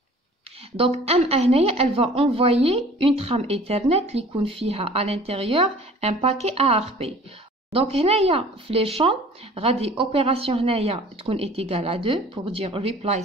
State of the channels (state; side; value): normal; both; correlation 0.48